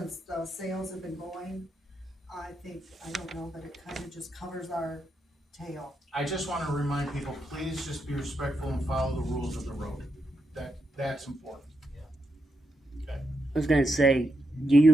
the sales have been going. I don't know, but it kind of just covers our tail. I just wanna remind people, please just be respectful and follow the rules of the road. That's important. I was gonna say,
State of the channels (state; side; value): normal; both; correlation 0.84